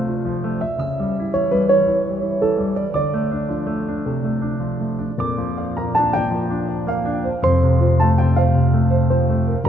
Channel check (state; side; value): normal; both; correlation 0.75